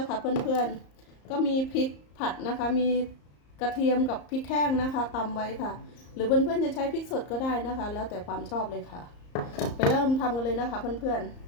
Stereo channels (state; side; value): late; right; 34 ms